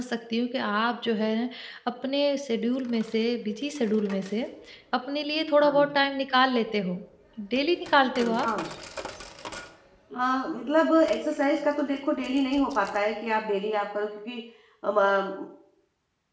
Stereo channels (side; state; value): both; identical; correlation 1.00